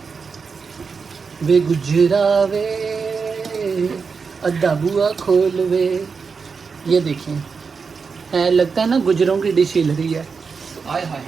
वे गुजरा वे अद्धा बुआ खोल वे, ये देखें है, लगता है ना गुजरों की डिश हिल रही है। आय हाय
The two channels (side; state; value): left; quieter; 5.3 dB